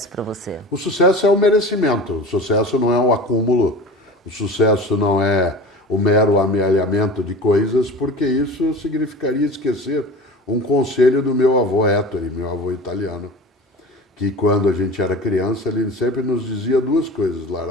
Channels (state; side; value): normal; both; correlation 0.36